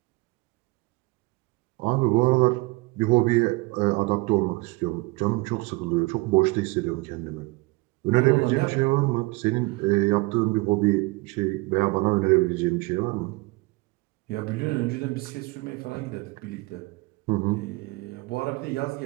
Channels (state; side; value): quieter; left; 24.3 dB